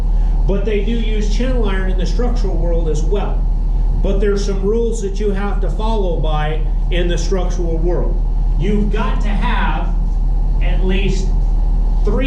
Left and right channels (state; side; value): identical; both; correlation 1.00